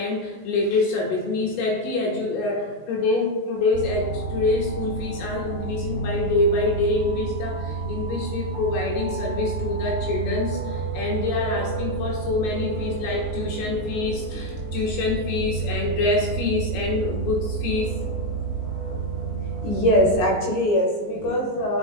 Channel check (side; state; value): right; late; 19 ms